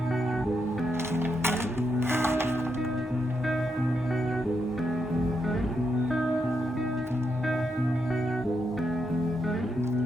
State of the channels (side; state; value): both; normal; correlation 0.82